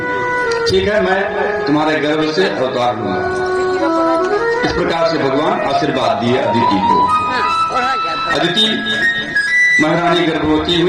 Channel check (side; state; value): both; identical; correlation 1.00